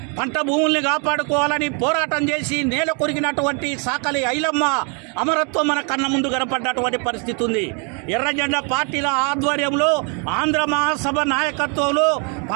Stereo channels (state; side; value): quieter; left; 36.6 dB